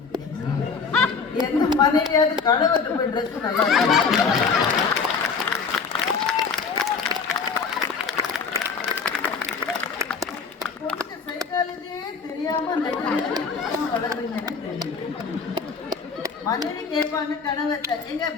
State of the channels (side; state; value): right; quieter; 5.3 dB